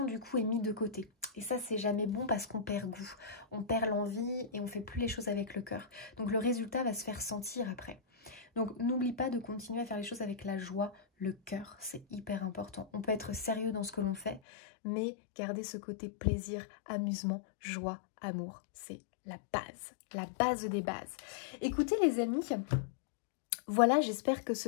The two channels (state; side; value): drops out; right; at 14.4 s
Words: du coup est mise de côté. Et ça c'est jamais bon parce qu'on perd goût, on perd l'envie et on fait plus les choses avec le cœur. Donc le résultat va se faire sentir après. Donc n'oublie pas de continuer à faire les choses avec la joie, le cœur, c'est hyper important. On peut être sérieux dans ce que l'on fait, mais garder ce côté plaisir, amusement, joie, amour, c'est la base des bases. Écoutez les amis, voilà, j'espère que ce